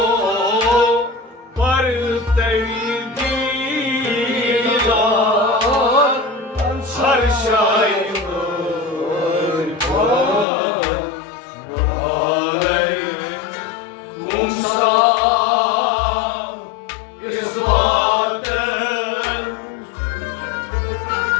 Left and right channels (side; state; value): right; drops out; at 10.5 s